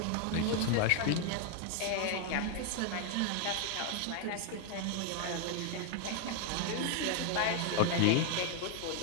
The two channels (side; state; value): both; different; correlation 0.00